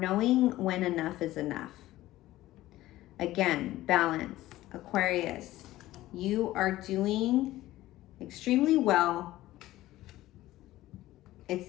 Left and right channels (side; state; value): right; quieter; 15.9 dB